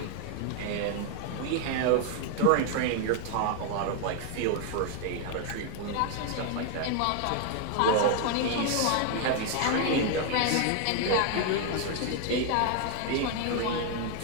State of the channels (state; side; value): different; both; correlation 0.00